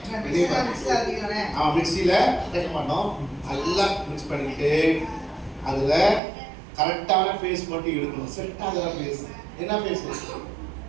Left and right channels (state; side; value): drops out; left; at 6.2 s